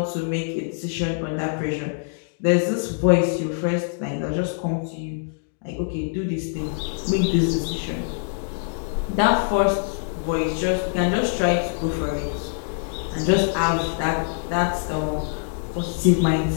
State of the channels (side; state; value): right; silent; digital silence